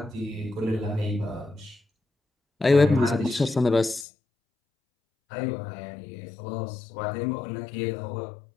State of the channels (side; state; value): right; drops out; at 4.0 s